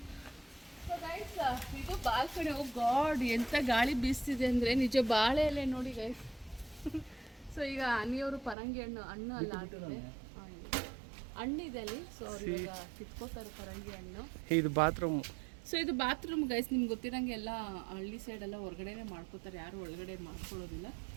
ಇದು ಬಾಲ್ಕನಿ. ಓ ಗಾಡ್, ಎಂತ ಗಾಳಿ ಬೀಸ್ತಿದೆ ಅಂದರೆ ನಿಜ. ಬಾಳೆ ಎಲೆ ನೋಡಿ ಗೈಸ್. ಸೊ ಈಗ ಅನಿಯವರು ಪರಂಗಿ ಹಣ್ಣು ಅಲ್ಲ ಆಗಿದೆ, ಹಣ್ಣಿದೆ ಅಲ್ಲಿ. ಸೊ ಅವ್ರು ಇವಾಗ ಕಿತ್ಕೋತಾರೆ ಪರಂಗಿ ಹಣ್ಣು. ಇದು ಬಾತ್ರೂಮ್. ಸೊ ಇದು ಬಾತ್ರೂಮ್ ಗೈಸ್. ನಿಮ್ಗೆ ಗೊತ್ತಿರಂಗೆ ಎಲ್ಲ ಹಳ್ಳಿ ಸೈಡೆಲ್ಲ ಹೊರಗಡೆನೆ ಮಾಡ್ಕೋತಾರೆ, ಯಾರು ಒಳಗಡೆ ಮಾಡ್ಕೊಳ್ಳೋದಿಲ್ಲ.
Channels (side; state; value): left; drops out; at 8.6 s